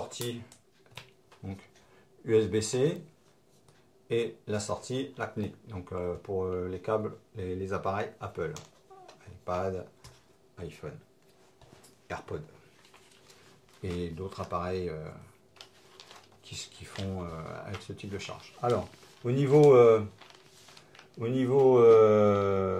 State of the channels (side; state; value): both; identical; correlation 1.00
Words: donc USB-C et la sortie LACNIC, donc pour les câbles, les appareils Apple, iPad, iPhone, AirPod et d'autres appareils qui font avec ce type de charge. Alors, au niveau